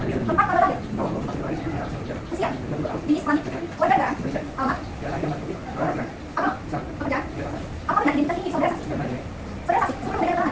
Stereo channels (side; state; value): both; identical; correlation 1.00